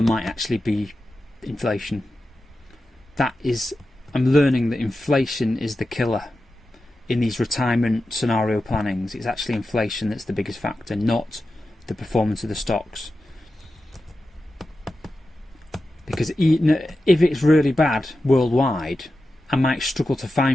might actually be inflation. I'm learning that inflation is the killer in these retirement scenario plannings. It's actually inflation that's the biggest factor, not the performance of the stocks. Because if it's really bad worldwide, I might struggle to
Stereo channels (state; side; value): normal; both; correlation 0.92